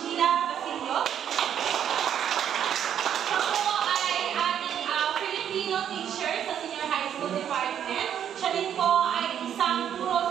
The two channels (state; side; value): quieter; left; 9.4 dB